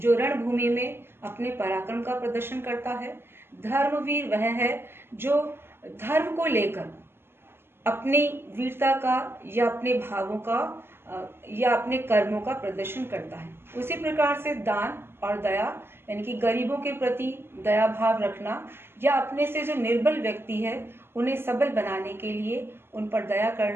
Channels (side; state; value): left; late; 0.11 ms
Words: रणभूमि में अपने पराक्रम का प्रदर्शन करता है। धर्मवीर वह है जो धर्म को लेकर अपनी वीरता का या अपने भावों का या अपने कर्मों का प्रदर्शन करता है। उसी प्रकार से दान और दया, यानी कि गरीबों के प्रति दया भाव रखना, या अपने से जो निर्बल व्यक्ति है उन्हें सबल बनाने के लिए उन पर दया